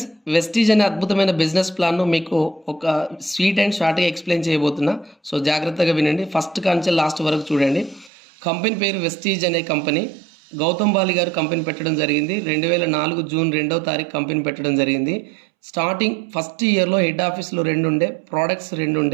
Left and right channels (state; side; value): drops out; left; at 8.1 s